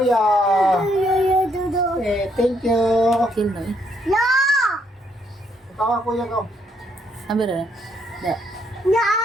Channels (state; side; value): normal; both; correlation 0.72